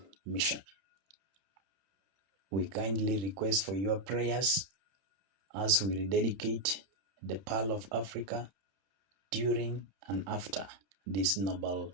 mission. We kindly request for your prayers as we rededicate the Pearl of Africa during and after this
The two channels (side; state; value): left; late; 31 ms